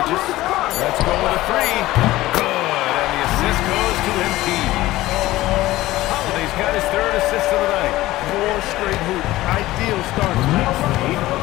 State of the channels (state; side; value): quieter; right; 16.9 dB